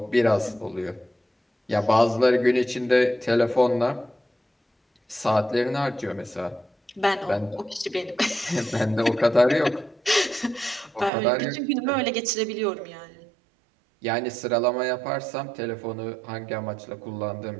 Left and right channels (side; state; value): left; drops out; at 11.1 s